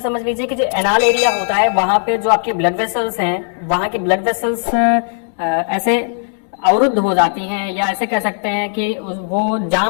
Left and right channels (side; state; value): right; silent; 68 dB below the other